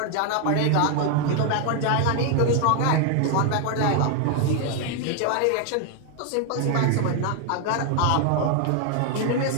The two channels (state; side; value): different; both; correlation 0.00